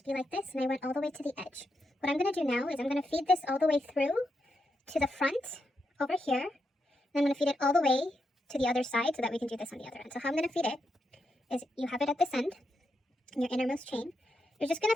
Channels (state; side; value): normal; both; correlation 0.83